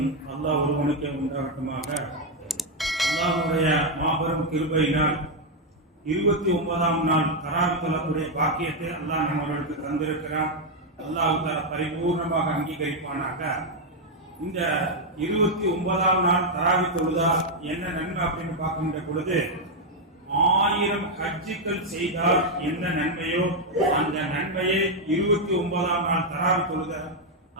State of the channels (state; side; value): normal; both; correlation 0.01